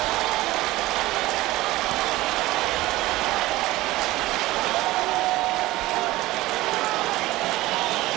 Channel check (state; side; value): quieter; left; 18.0 dB